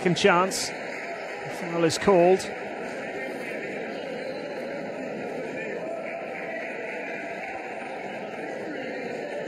chance. The foul is called.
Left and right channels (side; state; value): both; identical; correlation 1.00